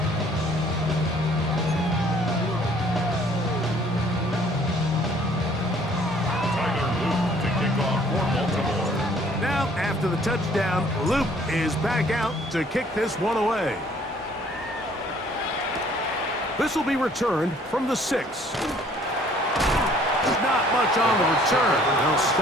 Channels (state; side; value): normal; both; correlation 0.58